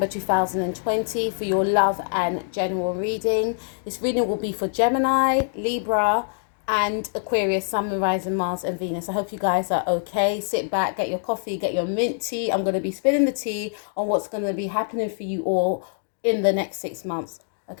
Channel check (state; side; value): silent; right; digital silence